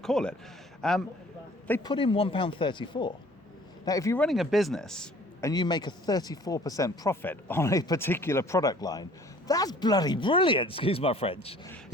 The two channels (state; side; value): normal; both; correlation 0.53